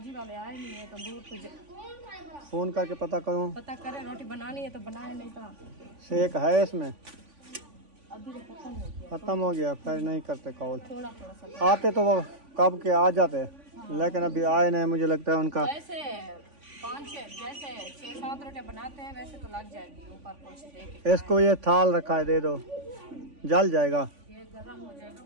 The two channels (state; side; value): late; left; 3.5 ms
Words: वाले आए नहीं है, तंदूर तो फोन करके पता करूँ। पता करें, रोटी बनानी है तो बनाए, नहीं था शेक है इसमें। अभी तो खत्म हो गया। खत्म हो गया, फिर नहीं करते कॉल। थोड़ा सा आते तो वो कब के आ जाते, लेकिन अभी आए नहीं। मुझे लगता है उनका वैसे 5-6 जैसे 6-7 रोटियां बनाते हैं वैसे तो लग जाएगी। ऊपर कुछ देके इसको ये थाल रखा है, दे दो, जल जाएगा। ये गर्म हो